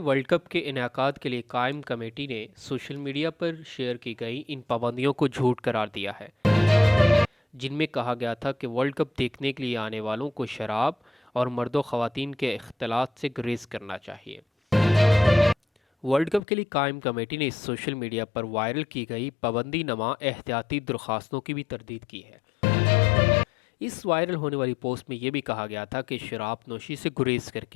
cup کے انعقاد کے لیے قائم کمیٹی نے سوشل میڈیا پر شیئر کی گئی ان پابندیوں کو جھوٹ قرار دیا ہے، جن میں کہا گیا تھا کہ ورلڈ کپ دیکھنے کے لیے آنے والوں کو شراب اور مرد و خواتین کے اختلاط سے گریز کرنا چاہیے۔ ورلڈ کپ کے لیے قائم کمیٹی نے اس سوشل میڈیا پر وائرل کی گئی پابندی نما احتیاطی درخواستوں کی بھی تردید کی ہے۔ اس وائرل ہونے والی پوسٹ میں یہ بھی کہا گیا تھا کہ شراب نوشی سے گریز کر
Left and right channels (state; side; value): drops out; right; at 16.4 s